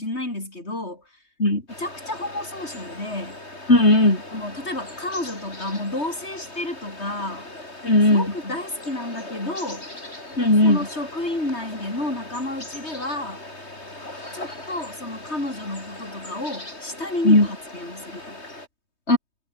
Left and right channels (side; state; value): right; late; 3.2 ms